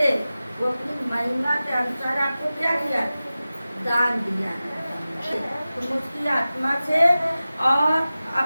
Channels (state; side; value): inverted; both; correlation -0.96